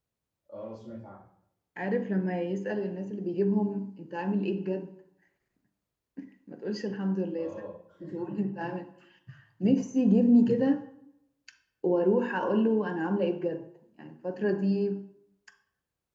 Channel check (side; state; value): both; identical; correlation 1.00